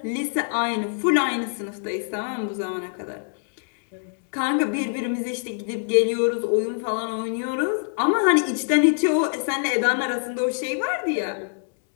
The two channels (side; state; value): right; silent; digital silence